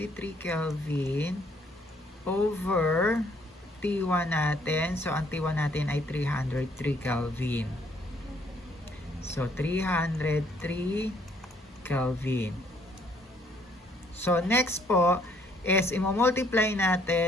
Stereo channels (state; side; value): normal; both; correlation 0.65